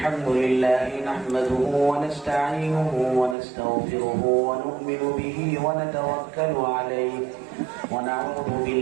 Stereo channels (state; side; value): drops out; left; at 3.4 s